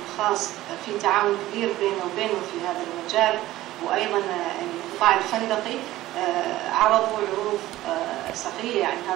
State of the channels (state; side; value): quieter; left; 15.9 dB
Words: الخاص في تعاون كبير بينه وبينه في هذا المجال، وأيضا القطاع الفندقي عرضوا عروض سخية يعني